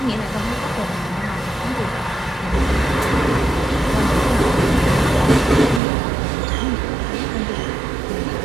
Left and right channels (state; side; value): drops out; left; at 5.8 s